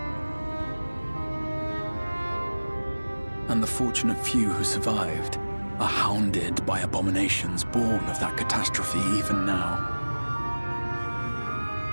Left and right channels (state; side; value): inverted; both; correlation -1.00